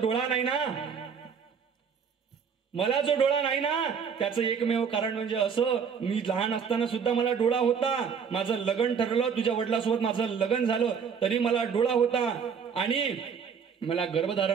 नाही ना त्याचं एकमेव कारण म्हणजे असं, मी लहान असताना सुद्धा मला डोळा होता. माझं लग्न ठरलं, तुझ्या वडिलांसोबत माझं लग्न झालं तरी मला डोळा होता आणि मला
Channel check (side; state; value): left; quieter; 6.6 dB